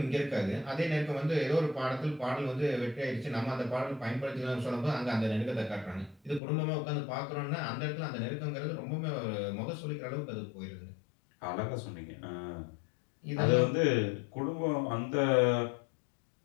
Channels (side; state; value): right; drops out; at 6.4 s